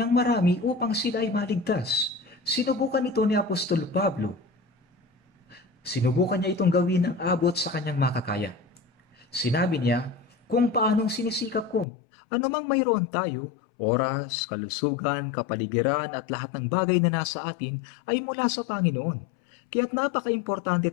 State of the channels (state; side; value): drops out; right; at 11.9 s